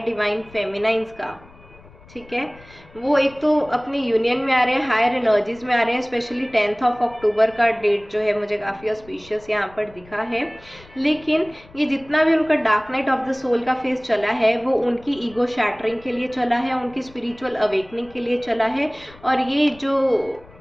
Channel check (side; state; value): left; noise; rumble, 24 dB below the sound